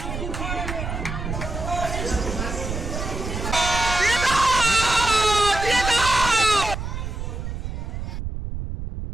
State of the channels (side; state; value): right; noise; rumble, 5 dB below the sound